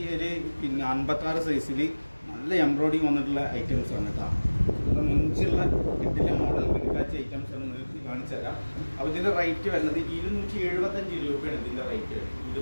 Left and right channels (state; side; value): inverted; both; correlation -1.00